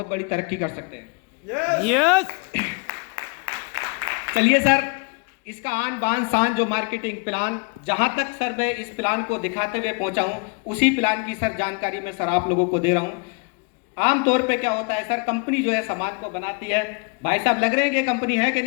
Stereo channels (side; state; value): right; quieter; 34.2 dB